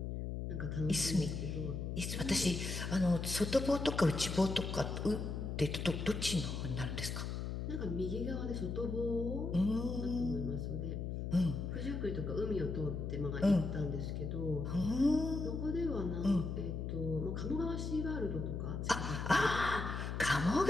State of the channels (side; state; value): left; noise; hum, 4 dB below the sound